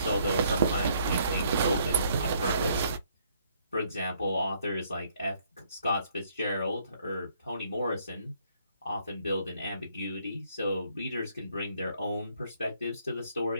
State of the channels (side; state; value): both; inverted; correlation -0.67